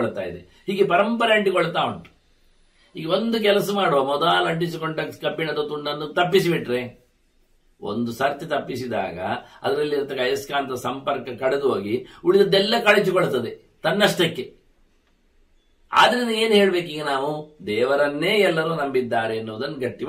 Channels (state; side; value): identical; both; correlation 1.00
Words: ಇದೆ. ಹೀಗೆ ಪರಂಪರೆ ಅಂಟಿಕೊಳ್ತಾ ಉಂಟು. ಈಗ ಒಂದು ಕೆಲಸ ಮಾಡುವ, ಮೊದಲು ಅಂಟಿಸಿಕೊಂಡ ಕಬ್ಬಿಣದ ತುಂಡನ್ನು ತಪ್ಪಿಸಿಬಿಟ್ರೆ, ಒಂದು ಸರ್ತಿ ತಪ್ಪಿಸಿದಾಗ ಅದರಲ್ಲಿ ಇರತಕ್ಕ ಅಯಸ್ಕಾಂತ ಸಂಪರ್ಕ ಕಳೆದು ಹೋಗಿ ಉಳಿದದ್ದೆಲ್ಲ ಕಳಚಿಕೊಳ್ತದೆ ತನ್ನಷ್ಟಕ್ಕೆ. ಆದ್ರಿಂದ ಏನು ಹೇಳ್ಬೇಕು? ಈಗ ನಾವು ದೇವರನ್ನೇ ಎಲ್ಲರೂ ನಂಬಿದ್ದಾರೆ ಎನ್ನುವುದನ್ನು ಗಟ್ಟಿ